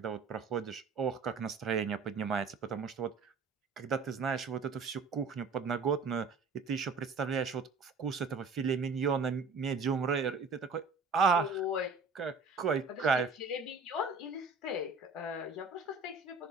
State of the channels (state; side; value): quieter; left; 4.2 dB